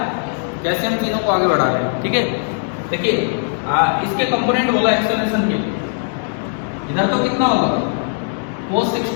कैसे हम तीनों को आगे बढ़ा रहे हैं? ठीक है, देखिए इसके कंपोनेंट बोला एक्सेलरेशन के, इधर तो कितना होगा? cos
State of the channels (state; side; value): silent; right; 67 dB below the other